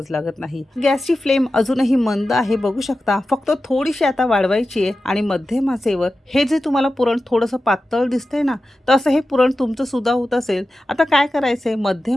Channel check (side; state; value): both; normal; correlation 0.93